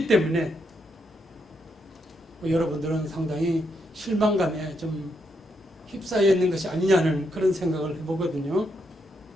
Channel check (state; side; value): normal; both; correlation 0.79